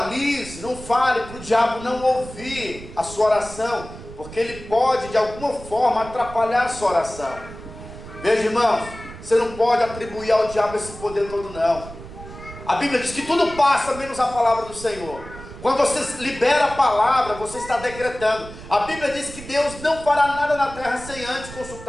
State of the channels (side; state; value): right; noise; rumble, 14 dB below the sound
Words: não fale para o diabo não ouvir a sua oração, porque ele pode de alguma forma atrapalhar a sua oração. Veja, irmãos, você não pode atribuir ao diabo esse poder todo, não. A Bíblia diz que tudo passa menos a palavra do Senhor. Quando você libera a palavra, você está decretando. A Bíblia diz que Deus não fará nada na terra sem antes